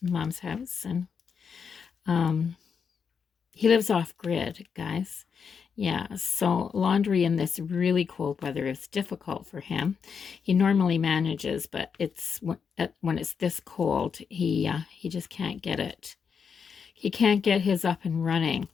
Mom's house. And he lives off grid, guys. Yeah, so laundry in this really cold weather is difficult for him. He normally manages, but it's when it's this cold, he just can't get it. He can't get his up and running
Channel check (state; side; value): quieter; right; 6.4 dB